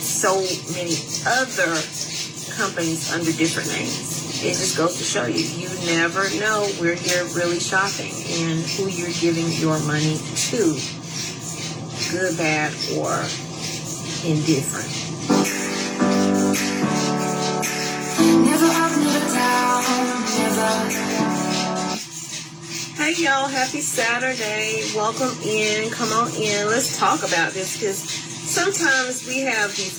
many other companies under different names. It just goes to show you, you never know where you're really shopping and who you're giving your money to. Good, bad, or indifferent. Never up, never down, never. Hey y'all, happy Saturday. Welcome in. Come on in. Let's talk about this because sometimes we have these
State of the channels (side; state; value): both; identical; correlation 1.00